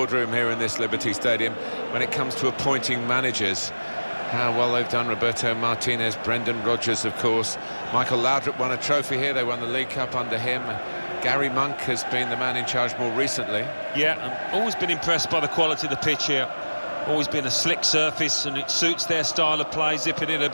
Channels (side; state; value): both; inverted; correlation -1.00